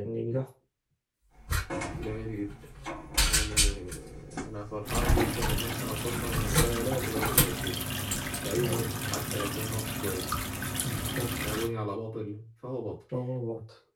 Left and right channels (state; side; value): identical; both; correlation 1.00